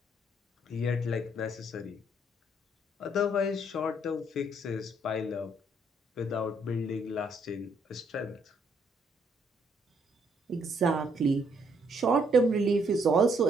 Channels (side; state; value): both; normal; correlation 0.69